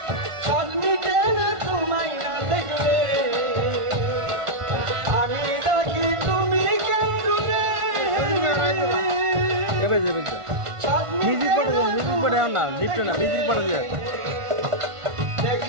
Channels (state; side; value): late; left; 1.5 ms